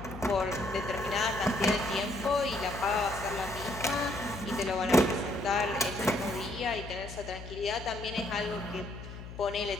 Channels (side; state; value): left; noise; hum, 12 dB below the sound